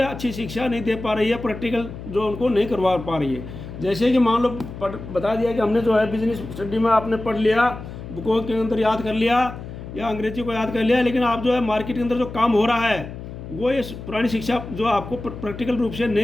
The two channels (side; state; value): left; noise; hum, 11 dB below the sound